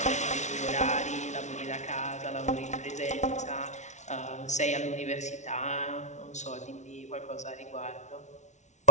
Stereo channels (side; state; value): right; late; 0.34 ms